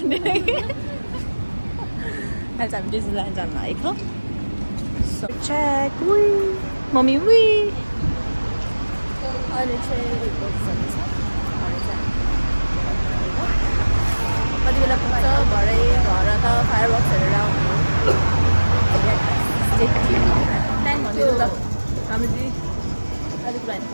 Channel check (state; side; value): inverted; both; correlation -1.00